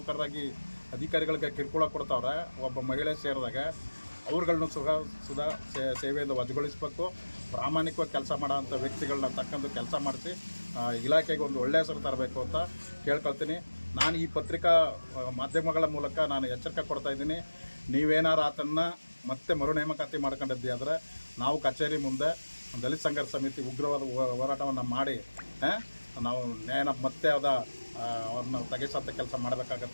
ಅಧಿಕಾರಿಗಳಿಗೆ ಕಿರುಕುಳ ಕೊಡ್ತಾವ್ರೆ, ಒಬ್ಬ ಮಹಿಳೆ ಸೇರಿದಾಗ ಅವ್ರುಗಳನ್ನೂ ಸುಧಾ ಸೇವೆಯಿಂದ ವಜಾಗೊಳಿಸಬೇಕು. ಪ್ರಾಮಾಣಿಕವಾಗಿ ಕೆಲಸ ಮಾಡೋಂಥ ವ್ಯಕ್ತಿಗಳನ್ನ ತಕ್ಕಂದು ಕೆಲಸ ಮಾಡಿಸಿ ಇಲಾಖೆಗೆ ಒಂದು ಒಳ್ಳೆಯ ಹೆಸರು ತರಬೇಕು ಅಂತ ಕೇಳ್ಕೊಳ್ತೀನಿ. ನಾನು ಈ ಪತ್ರಿಕಾ ಮಾಧ್ಯಮಗಳ ಮೂಲಕ ನಾನು ಎಚ್ಚರಿಕೆ ಕೊಡ್ತಾಯಿದ್ದೀನಿ. ನೀವೇನಾರು ಆತನ್ನು ಮತ್ತೆ ಮರು ನೇಮಕಾತಿ ಮಾಡ್ಕೊಂಡಿದ್ದಿ ಆದರೆ ನಾವು ಕಚೇರಿ ಮುಂದೆ ದಲಿತ ಸಂಘರ್ಷ ಸಮಿತಿ ಉಗ್ರವಾದ ಹೋರಾಟವನ್ನು ಮಾಡಿ ನಾವು ನ್ಯಾಯನ ಮತ್ತೆ ಅವ್ರನ್ನ ತೆಗೆಸಂಥ ಕೆಲಸ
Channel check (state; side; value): inverted; both; correlation -1.00